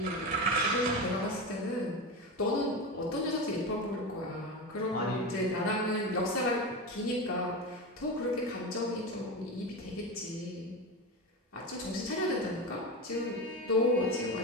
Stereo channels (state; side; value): normal; both; correlation 0.21